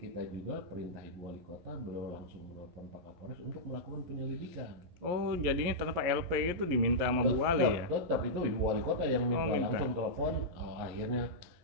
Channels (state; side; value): late; left; 11 ms